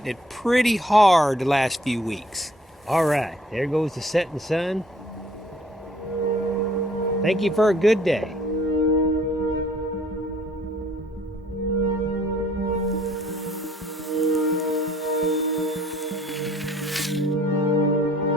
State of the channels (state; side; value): normal; both; correlation 0.59